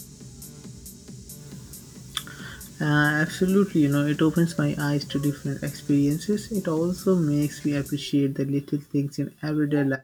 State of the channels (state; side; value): identical; both; correlation 1.00